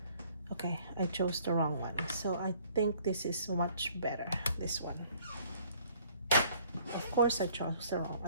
Okay, I chose the wrong one. So I think this is much better, this one. Of course I chose the wrong,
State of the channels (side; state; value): both; inverted; correlation -0.59